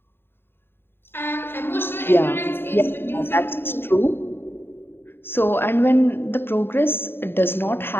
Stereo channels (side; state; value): right; late; 0.11 ms